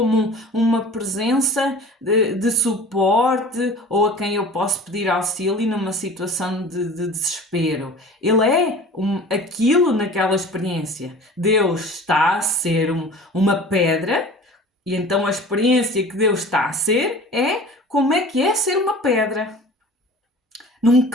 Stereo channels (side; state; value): both; normal; correlation 0.41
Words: uma presença de suporte ou a quem eu posso pedir auxílio numa situação de desespero. Ele é aquilo naquela experiência. Deus está a ser uma pedra e então a experiência que Deus está a ser é como é que é ser uma pedra. Num